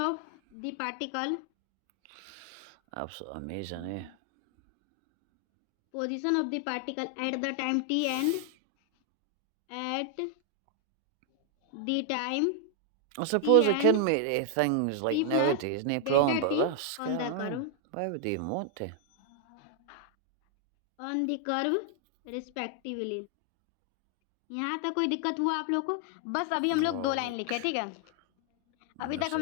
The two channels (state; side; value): different; both; correlation 0.00